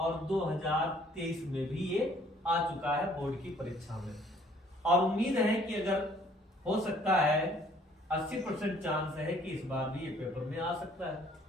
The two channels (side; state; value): both; normal; correlation 0.60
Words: 2023 में भी ये आ चुका है बोर्ड की परीक्षा में। और उम्मीद है कि अगर हो सकता है 80% चांस है कि इस बार भी ये पेपर में आ सकता है।